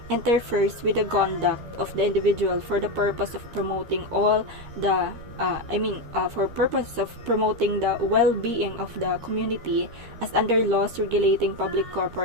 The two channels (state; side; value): late; left; 13 ms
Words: interferes with the conduct of the individual for the purpose of promoting the well-being of the community, as under laws regulating public